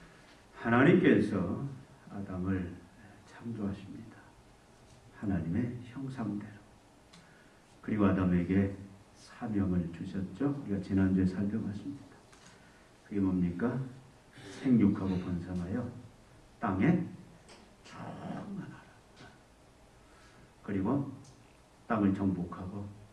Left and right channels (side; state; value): both; identical; correlation 1.00